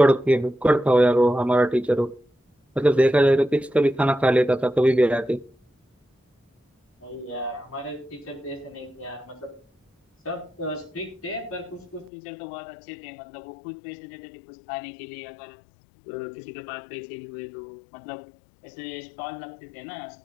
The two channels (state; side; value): drops out; right; at 12.1 s